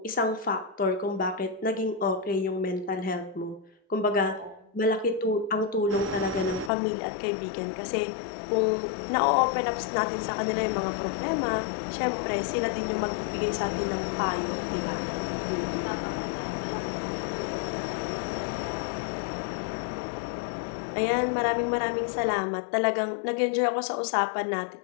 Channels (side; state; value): right; drops out; at 6.7 s